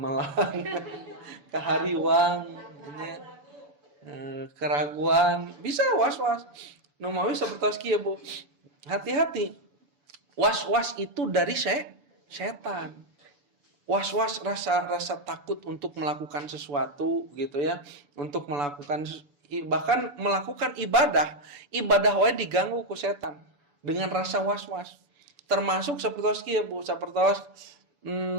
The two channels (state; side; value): late; left; 6.9 ms